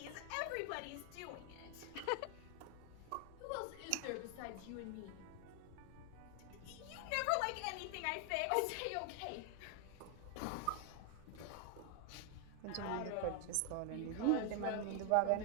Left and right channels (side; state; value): both; different; correlation 0.00